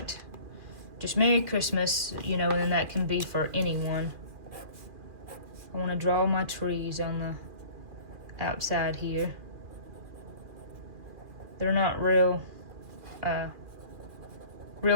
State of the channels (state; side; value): late; left; 2.4 ms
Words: just Merry Christmas, you know, and that can be for anyone. I want to draw my trees on the outside here. They're not real